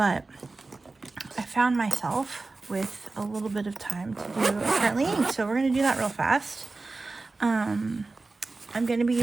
I found myself with a little bit of time to do currently inked, so we're gonna do that real fast. I'm gonna be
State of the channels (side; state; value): left; quieter; 3.6 dB